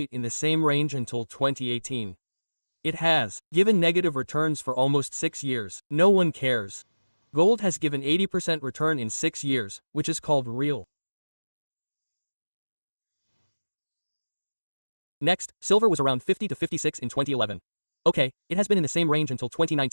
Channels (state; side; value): inverted; both; correlation -1.00